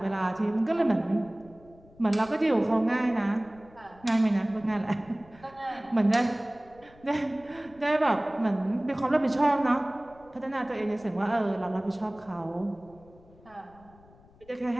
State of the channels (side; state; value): left; noise; rumble, 26 dB below the sound